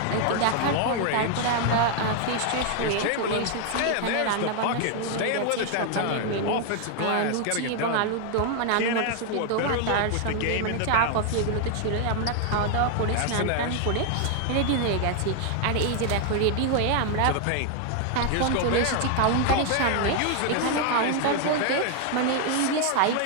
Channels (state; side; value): different; both; correlation 0.00